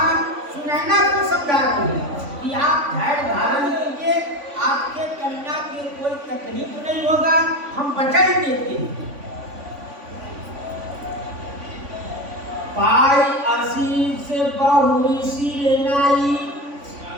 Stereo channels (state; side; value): late; left; 3.5 ms